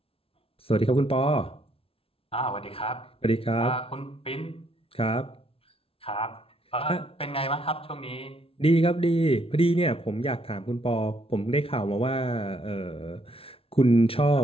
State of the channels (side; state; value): right; late; 0.27 ms